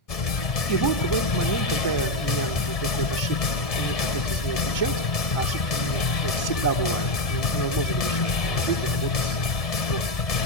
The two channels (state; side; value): late; right; 1.7 ms